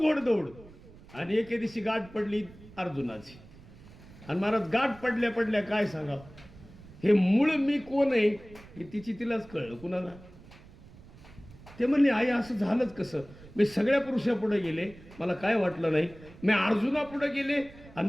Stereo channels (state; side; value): noise; right; rumble, 20 dB below the sound